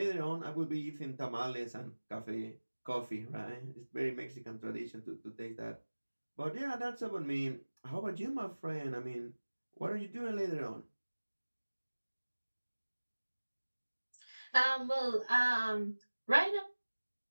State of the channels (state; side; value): inverted; both; correlation -1.00